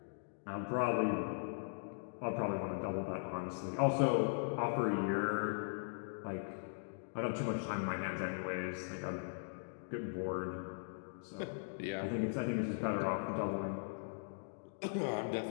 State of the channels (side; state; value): right; silent; digital silence